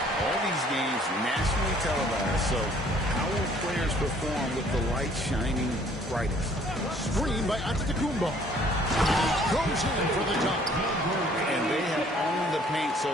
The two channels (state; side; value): normal; both; correlation 0.58